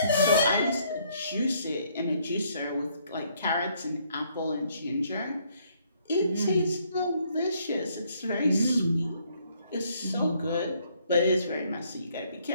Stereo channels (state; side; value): inverted; both; correlation -0.68